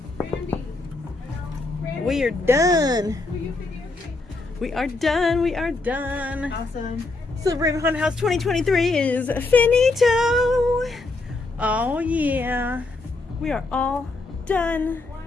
Randy. We are done. Will you videotape? We are done. We are done. Awesome. Silver Raven Haunted House 2023 is finito. Oh yeah. We are all done.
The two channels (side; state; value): right; quieter; 3.3 dB